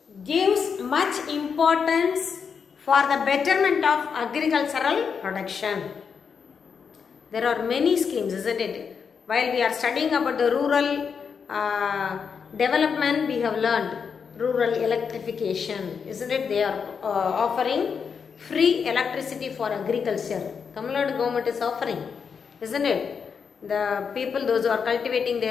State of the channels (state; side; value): quieter; right; 6.3 dB